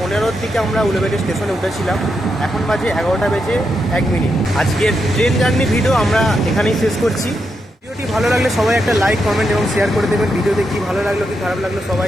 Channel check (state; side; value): normal; both; correlation 0.83